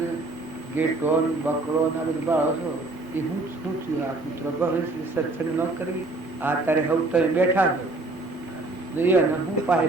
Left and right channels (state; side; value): quieter; left; 3.0 dB